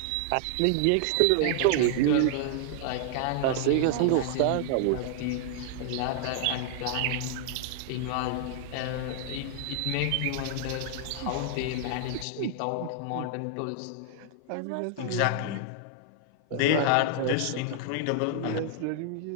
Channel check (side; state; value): both; different; correlation -0.01